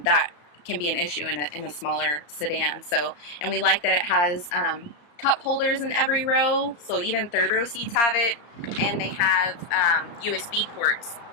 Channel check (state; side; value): late; right; 34 ms